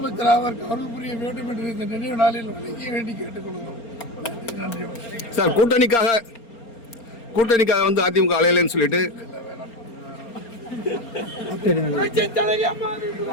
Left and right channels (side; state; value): right; late; 4.3 ms